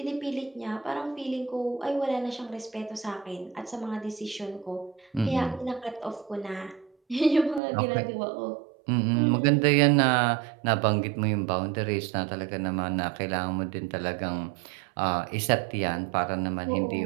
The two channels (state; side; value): drops out; left; at 7.6 s